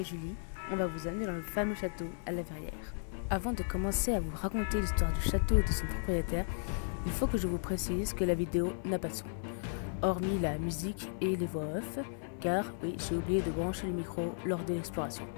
Julie, on va vous amener dans le fameux château à la Verrière. Avant de commencer à vous raconter l'histoire du château et de son propriétaire, il faut que je vous précise que la vidéo n'a pas de son, hormis la musique et les voix off, car oui, j'ai oublié de brancher le micro lors de l'exploration.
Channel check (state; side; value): silent; right; 55 dB below the other